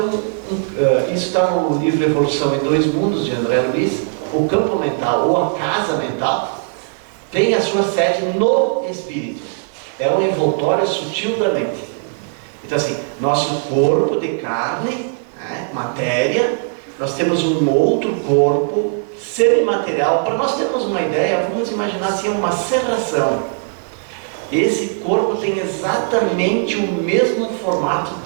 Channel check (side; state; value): left; silent; 67 dB below the other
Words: está no livro Evolução em Dois Mundos, de André Luiz. O campo mental, ou a casa mental, tem a sua sede no espírito. É um envoltório sutil da mente. Então assim, nosso corpo de carne, matéria, nós temos um outro corpo semimaterial. Para nós termos uma ideia, vamos imaginar assim, uma serração. Esse corpo tem exatamente o mesmo formato